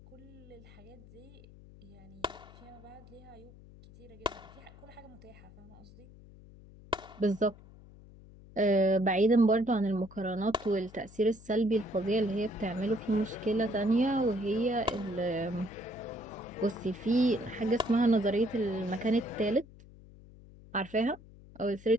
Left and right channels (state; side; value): noise; left; hum, 21 dB below the sound